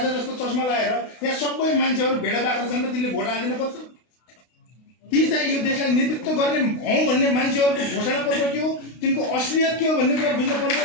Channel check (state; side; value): late; right; 32 ms